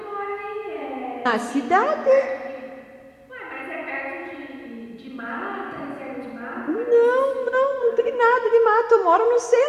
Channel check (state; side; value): identical; both; correlation 1.00